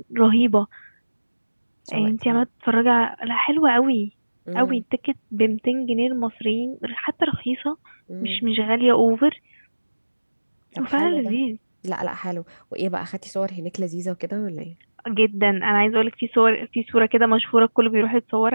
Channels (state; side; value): inverted; both; correlation -1.00